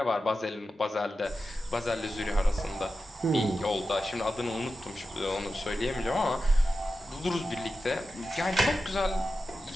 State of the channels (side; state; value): both; normal; correlation 0.91